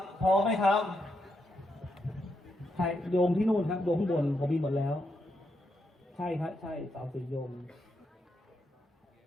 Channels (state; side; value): normal; both; correlation 0.81